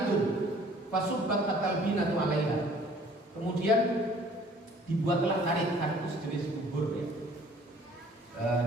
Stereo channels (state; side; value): normal; both; correlation 0.54